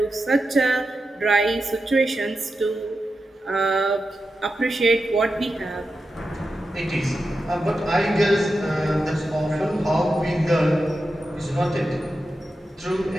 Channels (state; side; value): normal; both; correlation 0.89